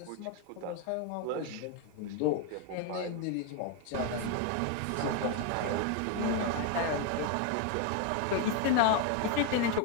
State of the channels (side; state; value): both; different; correlation 0.01